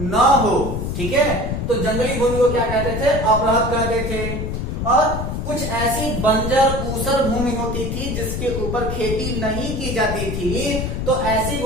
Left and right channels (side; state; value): left; noise; rumble, 3 dB below the sound